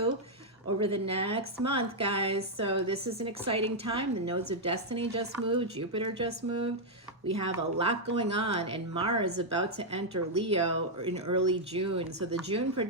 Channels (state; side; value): normal; both; correlation -0.03